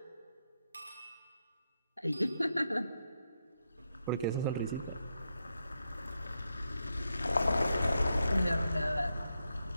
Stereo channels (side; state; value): both; inverted; correlation -0.84